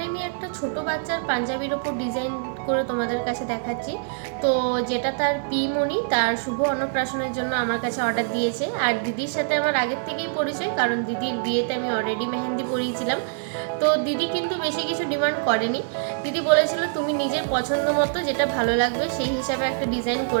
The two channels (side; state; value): left; silent; digital silence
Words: আমি একটা ছোট বাচ্চার পাঞ্জাবির ওপর ডিজাইন করে তোমাদের কাছে দেখাচ্ছি। তো যেটা তার পিমণি তার শুভ অন্নপ্রাশনের জন্য আমার কাছে অর্ডার দিয়েছে। আর দিদির সাথে আমার আগের থেকেই পরিচয়, কারণ দিদির বিয়েতে আমি অলরেডি মেহেন্দি পরিয়েছিলাম। তো দিদি কিন্তু বেশি কিছু ডিমান্ড করেনি। দিদি বলেছিল তুমি নিজের পছন্দ মতো যেটা ভালো লাগবে সেই হিসাবে একটা ডিজাইন